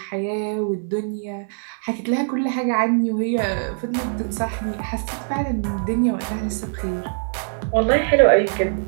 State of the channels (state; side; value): silent; left; digital silence